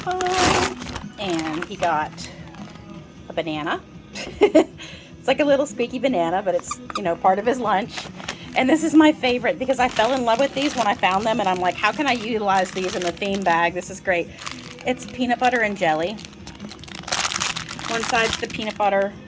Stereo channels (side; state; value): both; identical; correlation 1.00